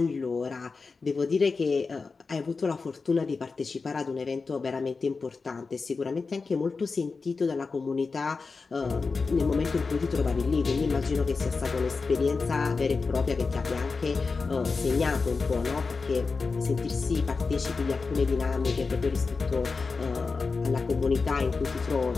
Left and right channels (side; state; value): right; quieter; 4.4 dB